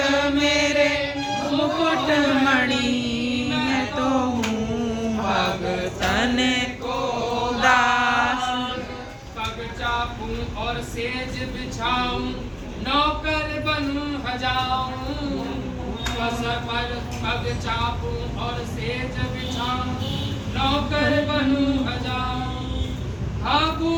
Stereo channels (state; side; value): identical; both; correlation 1.00